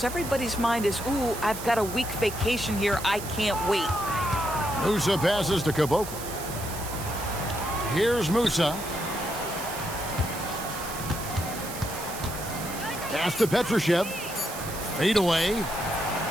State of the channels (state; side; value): noise; right; hiss, 10 dB below the sound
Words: Everybody's mind is, ooh, I've got a week vacation here. I can't wait. Musa passes to Caboclo. Here's Musa. Pass to Petrushev. Fade away.